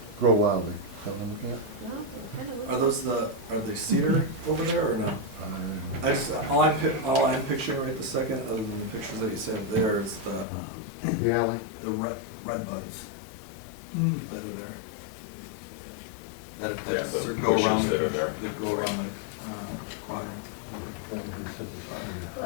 grow wildly? Is that what I'm looking at? No, it kinda looks Are those are they cedar over there or no? I just, all I'm picturing right this second, other than the pictures that you said there, is The alley? the red buds that are there. That Yeah, the go bushes around that are there. That go around the quadrant. That would be the simplest Well,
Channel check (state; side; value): drops out; right; at 10.5 s